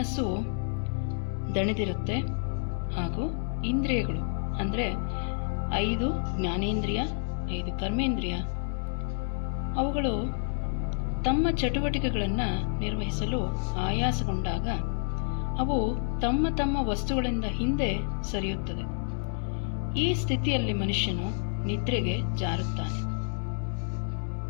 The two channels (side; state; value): right; silent; digital silence